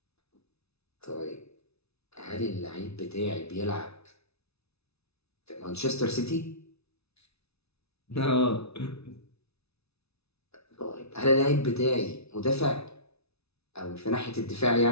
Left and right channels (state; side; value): late; right; 0.80 ms